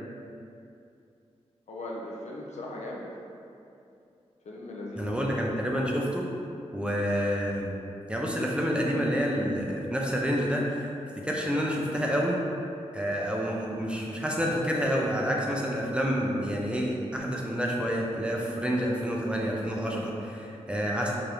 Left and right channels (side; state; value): both; normal; correlation 0.76